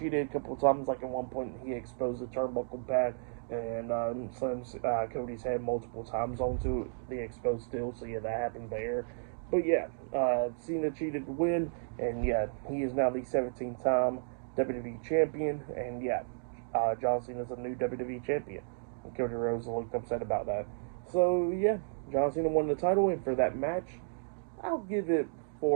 a couple of times, like at one point he exposed the turnbuckle pad and slams Cody's head multiple times onto the exposed steel, so yeah, that happened there. But yeah, Cena cheated to win, and yeah, he is now the 17th-time WWE Champion, and yeah, John Cena is a new WWE Champion. And Cody Rhodes looked upset about that. So yeah, John Cena won the title, and for that match, I'll give it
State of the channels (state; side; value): silent; left; digital silence